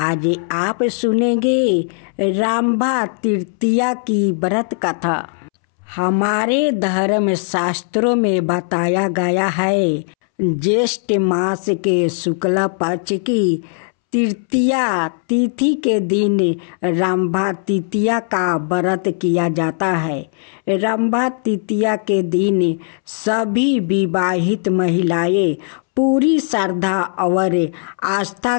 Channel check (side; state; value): right; silent; 67 dB below the other